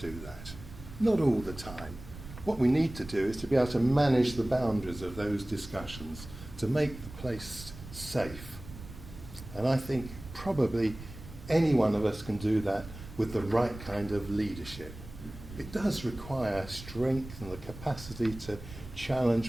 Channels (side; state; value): right; noise; rumble, 14 dB below the sound